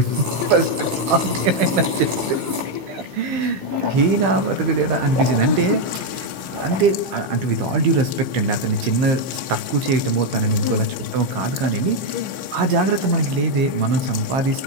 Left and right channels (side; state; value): left; late; 15 ms